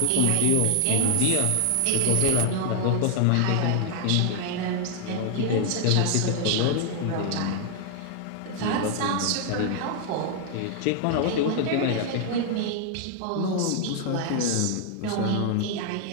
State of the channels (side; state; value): both; different; correlation 0.00